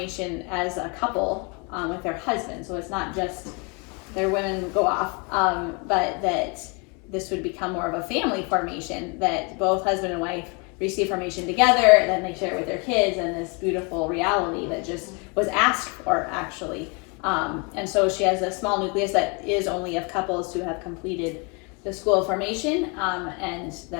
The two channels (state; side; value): quieter; right; 32.3 dB